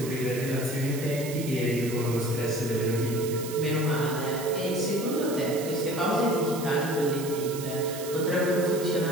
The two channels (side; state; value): right; noise; hiss, 11 dB below the sound